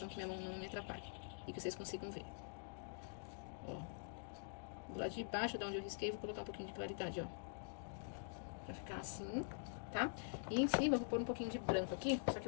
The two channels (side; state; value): right; silent; digital silence